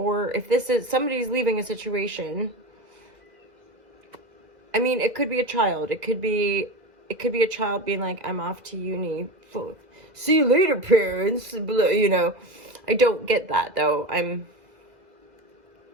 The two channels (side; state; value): left; late; 2.0 ms